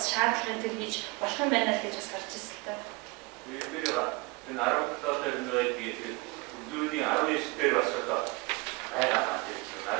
шаардлагын төр хийж болох юм байна л гэж бас харж ирсэн л та. Энэ 17 дээр нөөдгийг зүүнийн 19 дээр бас одоо байгаа маань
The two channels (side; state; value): left; quieter; 25.8 dB